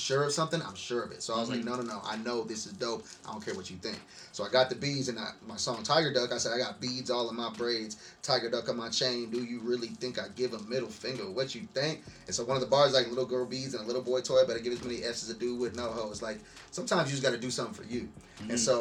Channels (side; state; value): both; identical; correlation 1.00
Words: of something, I'm sure of it. So I was like, no. I know this is dope. I don't care what you think. So I got the beads, and my song Tiger Duck, I said, I got beads all in my braids, Tiger Duck on my chain. Do you really think I give a middle finger? What you think? And so one of the bars like little girl beads and a little boy toy, but I give as many F's as a dude with no hoes. Like sometimes you just got to do something for you. And